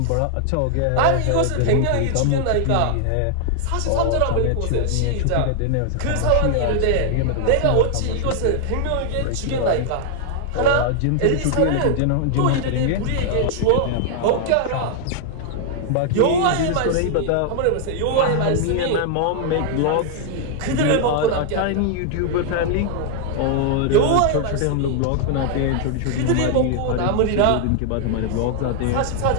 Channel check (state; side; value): different; both; correlation 0.00